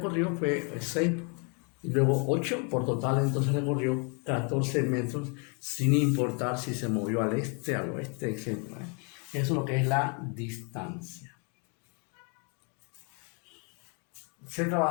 fue 6 y luego 8, por total entonces recorrió 14 metros, sin importar si se movió al este, al oeste, etc. Eso es lo que es la distancia. Se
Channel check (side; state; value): right; quieter; 35.8 dB